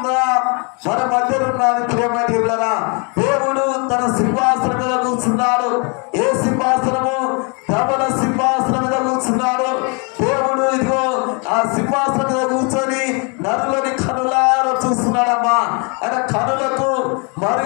మన మధ్యలో ఉన్నది ప్రియమైన దేవులారా. దేవుడు తన సింహాసనం మీద కూర్చున్నాడు. ఏ సింహాసనము? ధవల సింహాసనం మీద కూర్చున్నాడు దేవుడు. ఇదిగో ఆ సింహాసనం మీద కూర్చొని నరులని కనులారా చూస్తున్నాడమ్మా. ఆయన కనులకు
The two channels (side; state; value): right; quieter; 34.3 dB